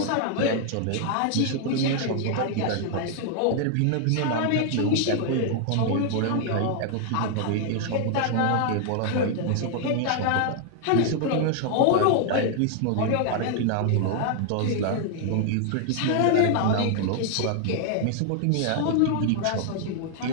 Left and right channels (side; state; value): both; different; correlation 0.00